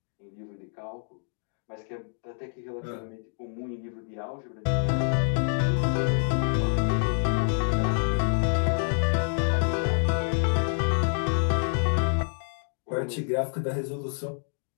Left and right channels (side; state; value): right; silent; digital silence